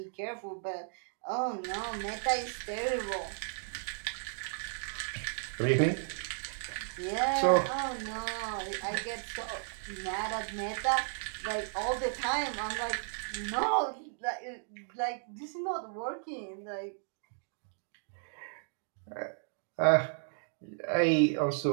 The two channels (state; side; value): silent; left; digital silence